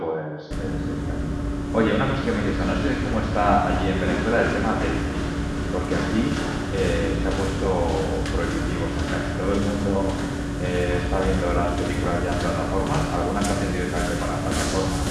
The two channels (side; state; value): both; identical; correlation 1.00